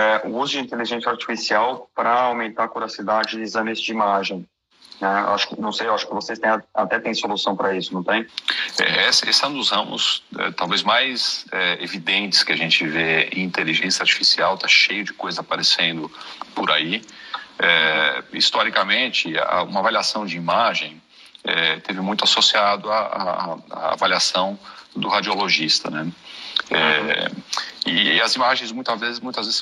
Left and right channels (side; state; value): both; identical; correlation 1.00